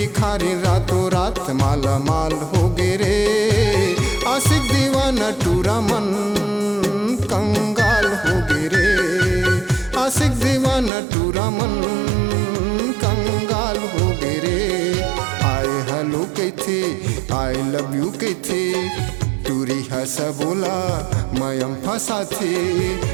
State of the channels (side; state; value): left; drops out; at 10.9 s